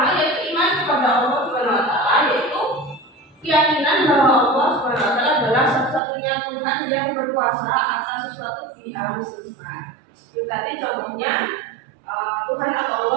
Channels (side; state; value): left; drops out; at 6.0 s